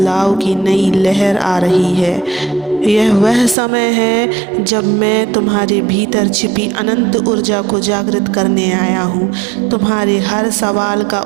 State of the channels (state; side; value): drops out; left; at 3.6 s